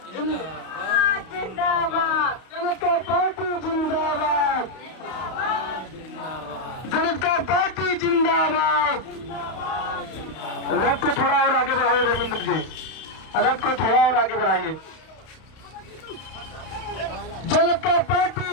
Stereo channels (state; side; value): late; right; 32 ms